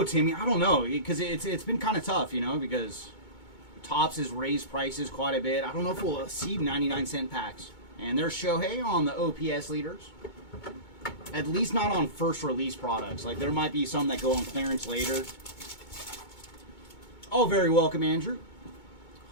Timmy. I don't know, because it's been kind of tough, you know, because Topps has raised prices quite a bit. I don't know if we'll see 99-cent packs. And there's Shohei on the OPS leaders. At least not on first release products. Like, there might be some that go on clearance later. Oh, very welcome, Andrew.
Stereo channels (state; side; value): late; right; 2.2 ms